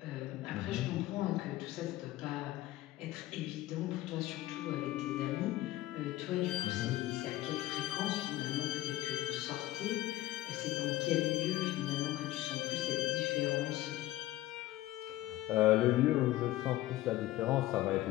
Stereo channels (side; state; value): right; quieter; 16.0 dB